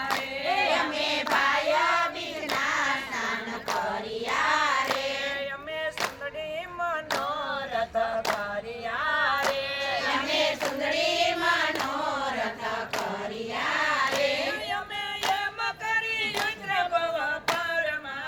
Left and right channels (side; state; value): both; identical; correlation 1.00